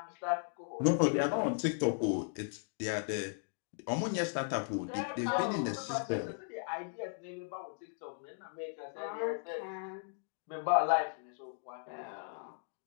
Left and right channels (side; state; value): right; silent; digital silence